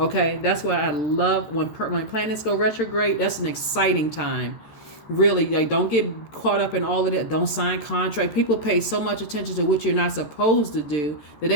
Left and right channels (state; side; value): late; right; 13 ms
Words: that's why I love when planets go retrograde. That's an exciting time. Really, like, don't get caught up in all of that. Don't sign contract. People pay so much attention to what you're not supposed to do that